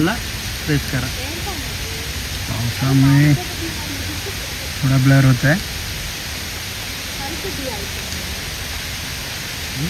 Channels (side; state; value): both; identical; correlation 1.00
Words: प्रेस करा. पावसामुळे थोडा ब्लर होत आहे.